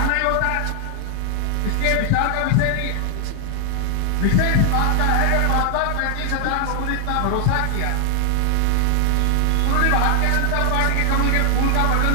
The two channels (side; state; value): both; different; correlation 0.00